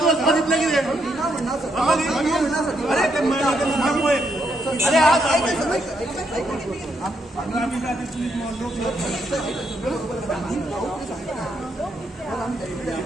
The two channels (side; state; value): both; normal; correlation 0.77